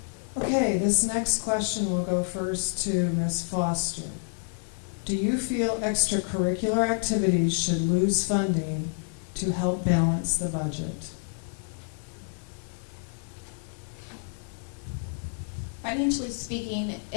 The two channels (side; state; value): right; silent; 59 dB below the other